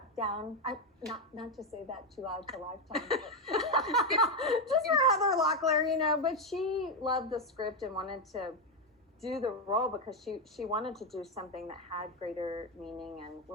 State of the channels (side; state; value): both; normal; correlation 0.07